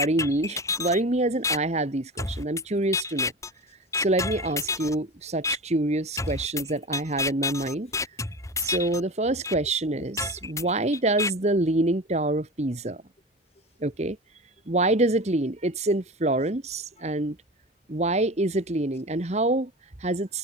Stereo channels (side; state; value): both; normal; correlation 0.30